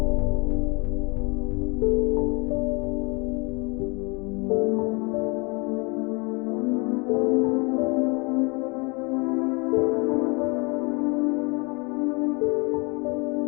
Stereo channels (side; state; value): right; quieter; 29.9 dB